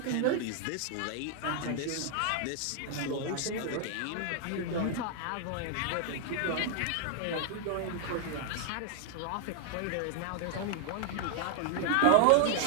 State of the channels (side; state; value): both; different; correlation 0.00